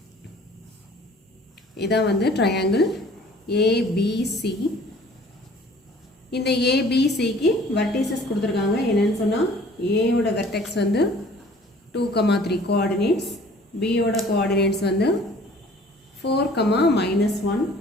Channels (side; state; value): both; normal; correlation 0.52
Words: இதான் வந்து triangle ABC. இந்த ABCக்கு vertices கொடுத்துருக்காங்க. என்னன்னு சொன்னால் A ஓட vertex வந்து 2,3 coordinates, B ஓட coordinates வந்து 4,-1